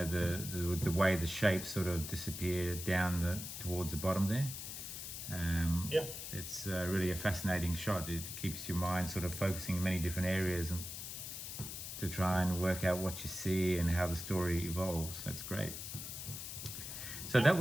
the way the shapes sort of disappear down towards the bottom there. It's really a fascinating shot. It keeps your mind sort of focusing in many different areas and to try and work out what you see and how the story evolves. That's great. So that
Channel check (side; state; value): left; noise; hiss, 7 dB below the sound